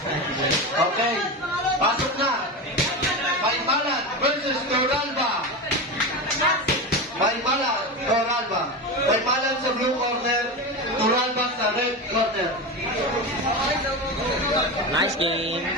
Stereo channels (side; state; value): both; normal; correlation 0.21